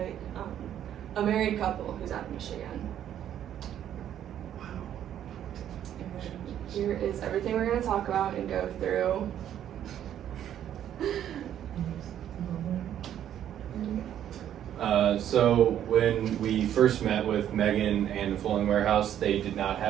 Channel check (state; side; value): quieter; left; 10.5 dB